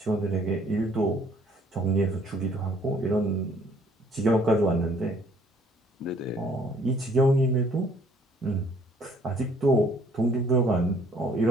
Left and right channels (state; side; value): normal; both; correlation 0.60